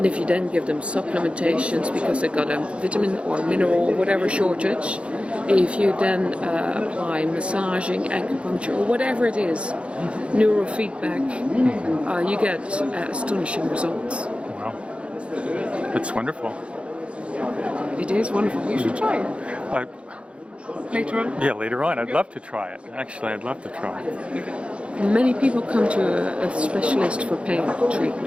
And if you then give them supplementations because they've got a vitamin or mineral, whatever shortage, if you then apply massaging, acupuncture, or whatever it is, neurofeedback, you get astonishing results. Wow. It's wonderful. It is wonderful. You should try it. Later on? Yeah, later on. I'd love to try it. Actually, I'd love to try it. Many people come to a specialist for pain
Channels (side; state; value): left; late; 0.059 ms